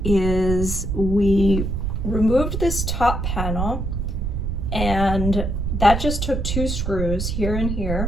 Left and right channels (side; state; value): right; noise; rumble, 1 dB below the sound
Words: is we removed this top panel, and that just took two screws here and